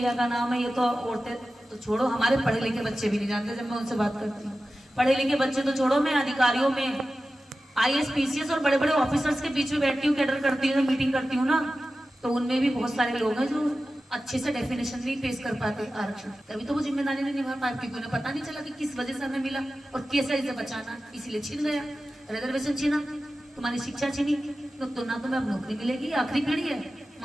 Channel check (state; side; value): normal; both; correlation 0.94